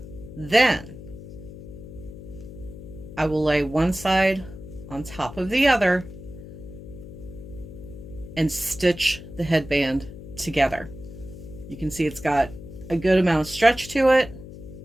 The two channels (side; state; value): left; noise; hum, 14 dB below the sound